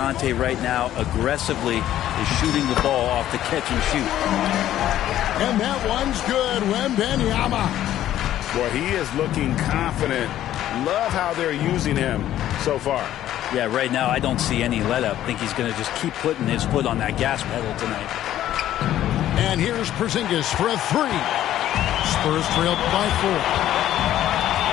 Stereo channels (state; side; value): quieter; right; 12.5 dB